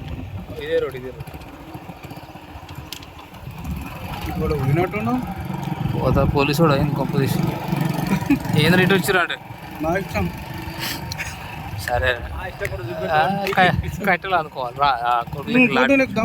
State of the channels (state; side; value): identical; both; correlation 1.00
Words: ఇదే రోడ్ ఇప్పుడు వినట్టున్నావు పోతా పోలీసు కూడా అయింది కొంప తీసి ఏం రేటు వచ్చిరా అంటే నా ఇష్టం సరే కట్టెలు అనుకోవాలి రా నీకు